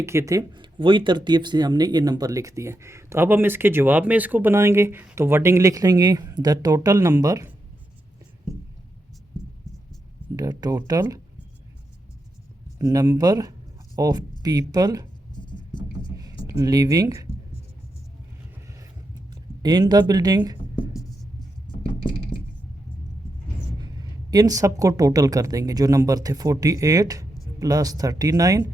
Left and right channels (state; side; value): normal; both; correlation 0.85